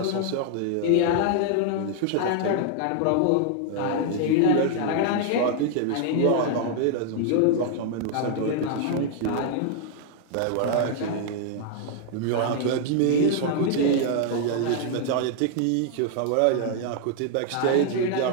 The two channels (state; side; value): different; both; correlation 0.00